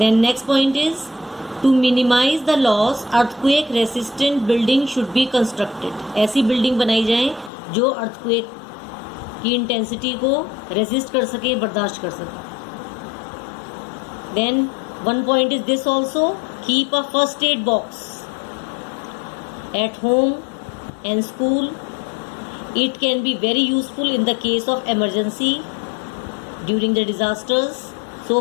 next point is, to minimize the loss, earthquake resistant building should be constructed. ऐसी building बनाई जाए जो earthquake की intensity को resist कर सके, बर्दाश्त कर सके. Then one point is this also, keep a first aid box at home and school It can be very useful in the case of emergency during the disasters.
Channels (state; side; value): drops out; right; at 7.5 s